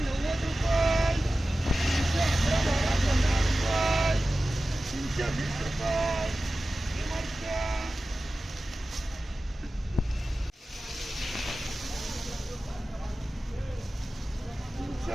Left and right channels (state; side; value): normal; both; correlation 0.95